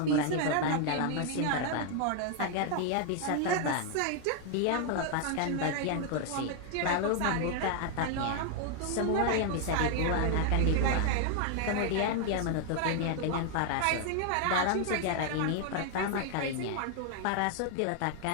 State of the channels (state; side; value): different; both; correlation 0.00